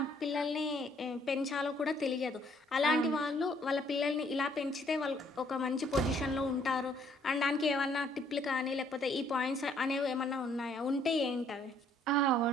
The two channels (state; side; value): normal; both; correlation 0.65